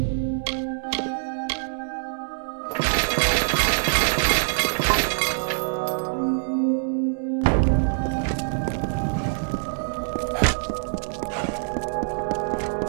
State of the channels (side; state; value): left; silent; digital silence